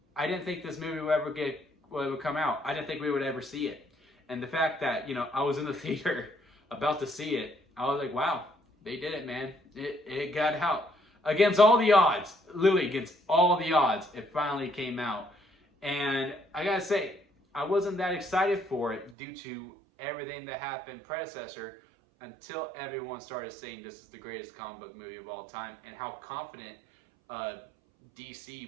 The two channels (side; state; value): left; drops out; at 19.2 s